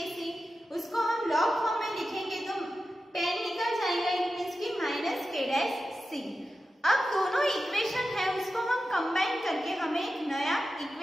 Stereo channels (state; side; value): normal; both; correlation 0.92